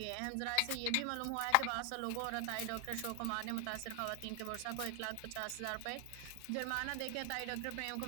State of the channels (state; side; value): different; both; correlation 0.00